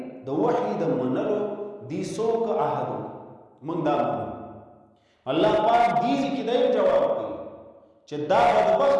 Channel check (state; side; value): identical; both; correlation 1.00